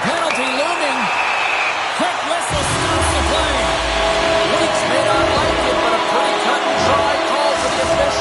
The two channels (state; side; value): identical; both; correlation 1.00